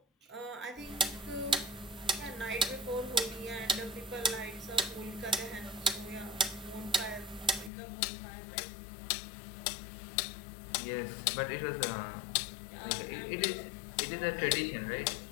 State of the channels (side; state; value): right; drops out; at 7.7 s